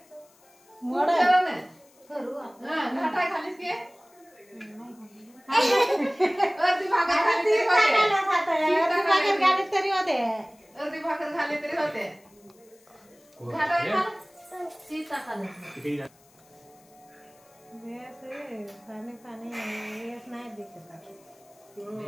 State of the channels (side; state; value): left; noise; hiss, 30 dB below the sound